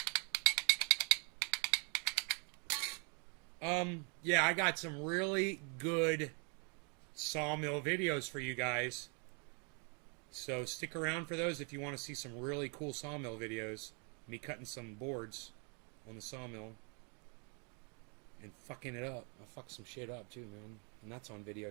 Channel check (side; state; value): left; quieter; 37.5 dB